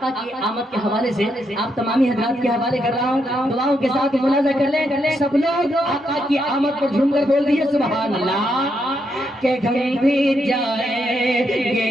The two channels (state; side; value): normal; both; correlation 0.79